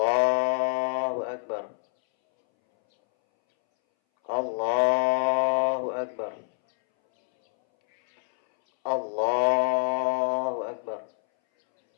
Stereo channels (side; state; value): right; silent; 61 dB below the other